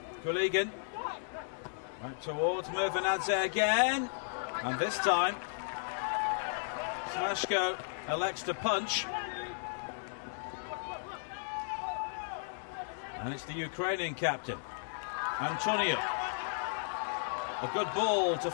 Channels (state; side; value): silent; right; digital silence